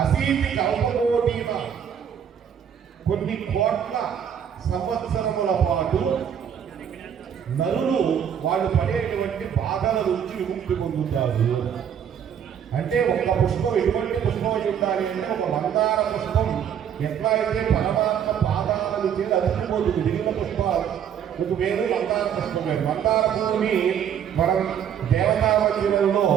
అసీతి కల్పకోటీన కొన్ని కోట్ల సంవత్సరముల పాటు నరులు వాళ్ళు పడేటువంటి బాధల నుంచి విముక్తి పొందుతారు. అంటే ఒక్క పుష్పం ఎటువంటి పుష్పం అయి ఉండాలి అంటే ఒక మందార పుష్పం ఎట్లా అయితే పరమాత్మ పాదాలను చేసి అతికిపోతుంది. మిగిలిన పుష్పాలు మీకు వేరు, మందార పుష్పం వేరు. మందార పువ్వుని మనం దేవతా మందిరంలో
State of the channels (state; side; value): quieter; left; 8.6 dB